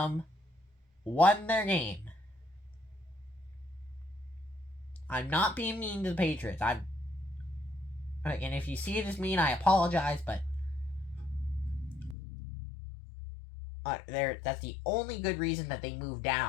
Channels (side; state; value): right; drops out; at 12.2 s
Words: won their game. I'm not being mean to the Patriots. And if you see it as mean, I apologize, but that's the only good reason that they moved